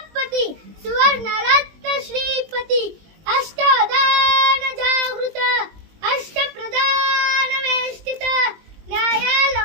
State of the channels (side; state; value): left; late; 19 ms